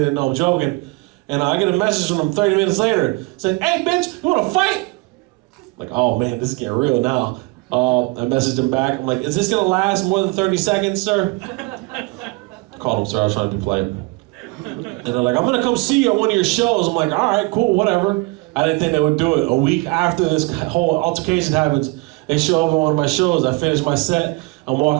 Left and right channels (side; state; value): left; quieter; 25.7 dB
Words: they know I'm joking. And I get a message from them 30 minutes later saying, hey, bitch, you want to fight? I'm like, oh, man, this is getting real now. I messaged him back. I'm like, is this going to last more than 30 seconds, sir? I called him, sir. I was trying to be polite. And they're like, I'm going to come see you at one of your shows. I'm like, all right, cool, whatever. I didn't think they would do it. A week after this whole altercation happens, they show up at one of my shows. I finish my set. I'm